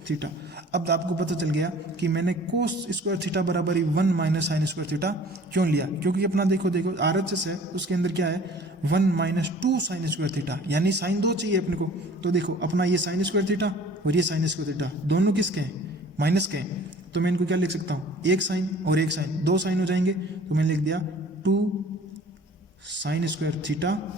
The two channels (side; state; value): both; normal; correlation 0.49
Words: थीटा। अब आपको पता चल गया कि मैंने कोस स्क्वायर थीटा बराबर ही 1 माइनस साइन स्क्वायर थीटा क्यों लिया, क्योंकि अपना देखो RHS है उसके अंदर क्या है 1 माइनस 2 साइन स्क्वायर थीटा, यानी साइन 2 चाहिए अपने को। तो देखो अपना ये साइन स्क्वायर थीटा और ये साइन स्क्वायर थीटा दोनों किसके हैं, माइनस के हैं, तो मैं इनको क्या लिख सकता हूँ, एक साइन और एक साइन, 2 साइन हो जाएंगे, तो मैंने लिख दिया 2 साइन स्क्वायर थीटा